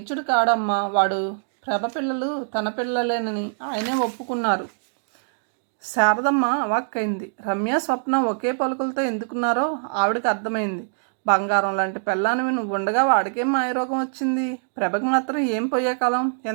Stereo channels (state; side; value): silent; left; digital silence